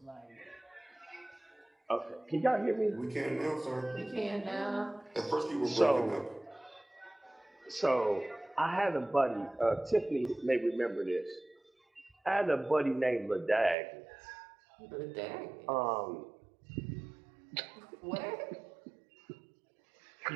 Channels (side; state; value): left; drops out; at 13.8 s